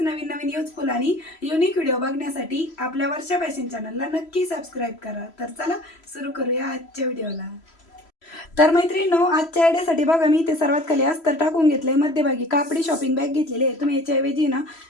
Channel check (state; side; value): late; right; 3.0 ms